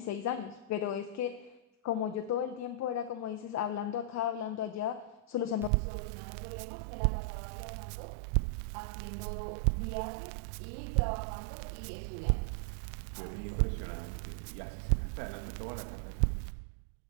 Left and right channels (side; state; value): left; drops out; at 5.7 s